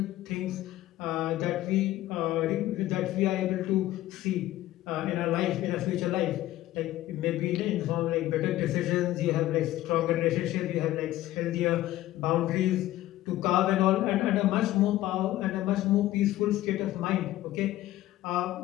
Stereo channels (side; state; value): right; quieter; 15.1 dB